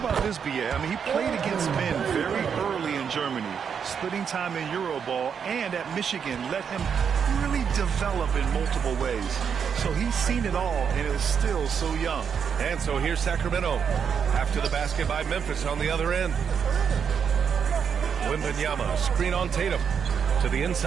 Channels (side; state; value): left; quieter; 7.1 dB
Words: this, BA, I mean, he played against men very early in Germany, splitting time in Euroball, and at Michigan let him really develop in multiple ways. So he's seen it all and is still so young. And so here's Sacramento after the basket by Memphis on the other end. Wembanyama, screen on Tatum to the